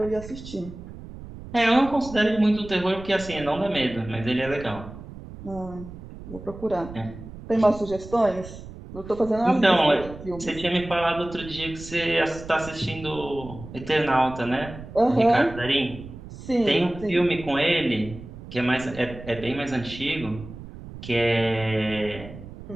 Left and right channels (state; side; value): noise; right; rumble, 14 dB below the sound